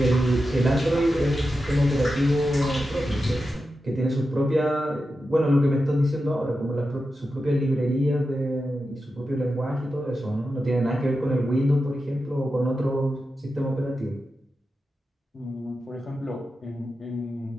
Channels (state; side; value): normal; both; correlation 0.90